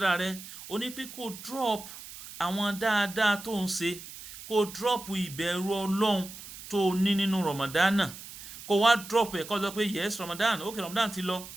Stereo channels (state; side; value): noise; right; hiss, 14 dB below the sound